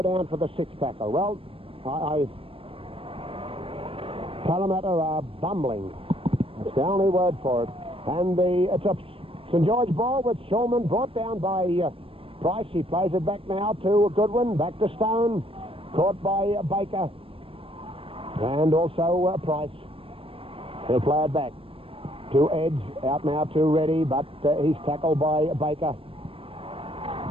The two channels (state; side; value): late; left; 0.27 ms